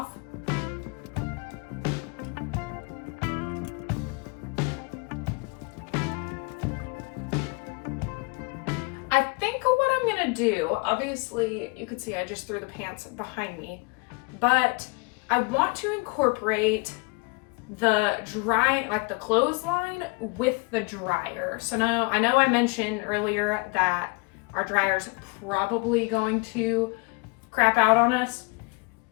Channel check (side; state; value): right; quieter; 28.4 dB